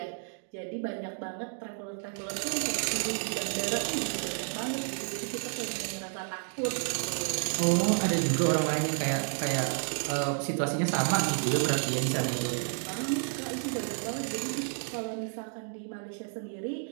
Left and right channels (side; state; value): left; silent; 57 dB below the other